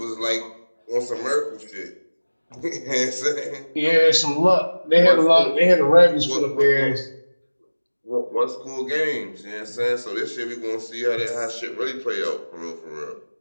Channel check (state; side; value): inverted; both; correlation -1.00